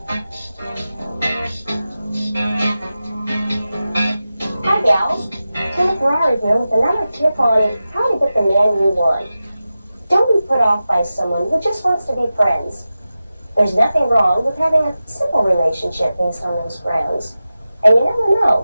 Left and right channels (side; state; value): both; inverted; correlation -0.94